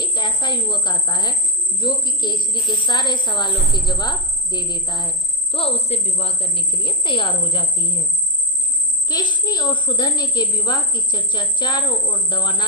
ऐसा युवक आता है जो कि केशनी के सारे सवालों के जवाब दे देता है, तो उससे विवाह करने के लिए तैयार हो जाती है। केशनी और सुधन्य के विवाह की चर्चा चारों ओर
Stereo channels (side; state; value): both; normal; correlation 0.02